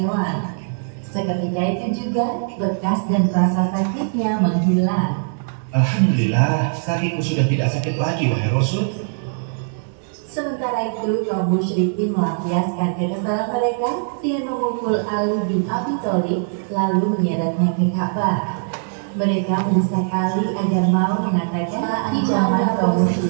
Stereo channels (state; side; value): silent; left; digital silence